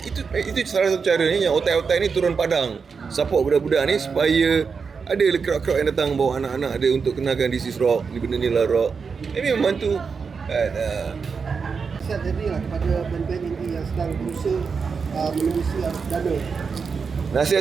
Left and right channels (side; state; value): left; quieter; 5.5 dB